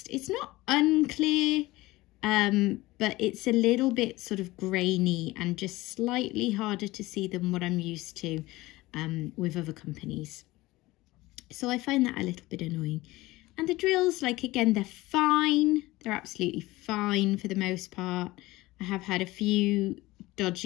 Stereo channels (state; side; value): quieter; right; 19.3 dB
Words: it's not unclear, but it's a little bit sort of grainy and just slightly harder to see than what I'm used to with other companies. So I find that a little bit annoying. And the drills, like, again, they're fine. They're absolutely fine for the most part. I have had a few